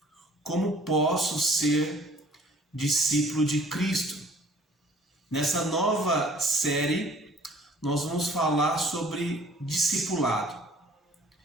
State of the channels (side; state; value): both; normal; correlation 0.54